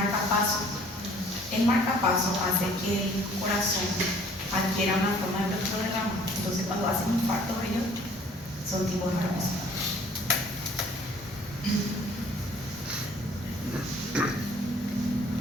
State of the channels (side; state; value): both; normal; correlation 0.56